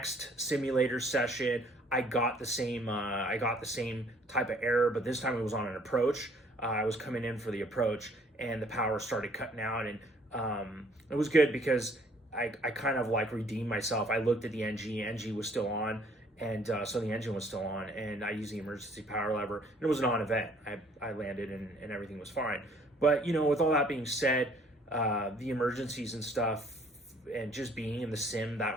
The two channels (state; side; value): normal; both; correlation 0.60